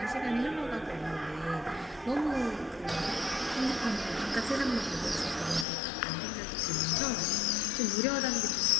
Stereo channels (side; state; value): right; drops out; at 5.7 s